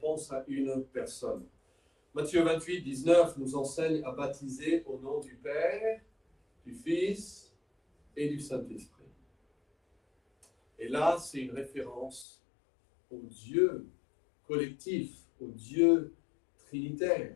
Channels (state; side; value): drops out; right; at 12.2 s